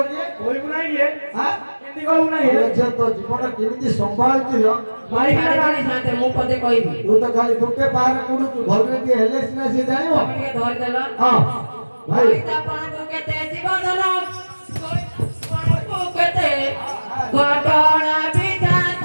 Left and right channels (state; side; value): inverted; both; correlation -1.00